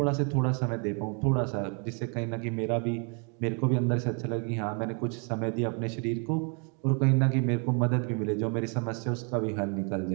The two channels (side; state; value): left; quieter; 37.4 dB